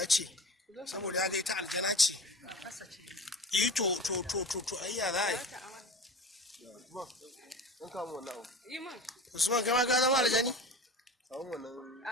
ce saboda ya ga ita aljana ce yi to ayya za a yi Usman kai ma ka zama aljani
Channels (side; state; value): both; normal; correlation 0.35